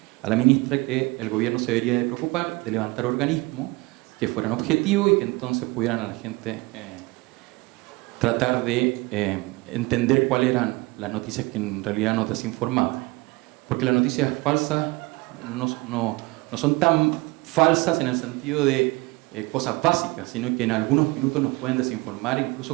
a la ministra que el gobierno se debería de preocupar de levantar organismos que fueran objetivos y que entonces pudieran a la gente tratar de entender cuáles eran las noticias que en realidad nos desinformaban. Porque las noticias falsas no son tan falsas en el sentido de cosas básicas, sino que en algunos minutos nos pueden desinformar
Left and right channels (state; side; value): quieter; left; 23.8 dB